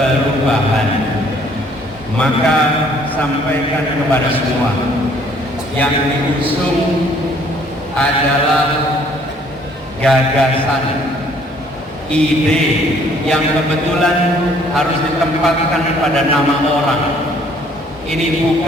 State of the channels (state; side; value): normal; both; correlation 0.61